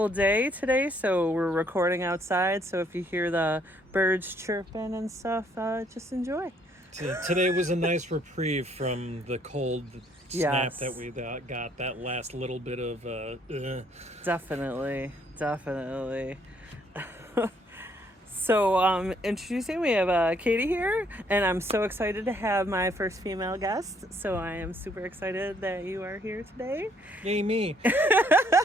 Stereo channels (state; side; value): normal; both; correlation 0.67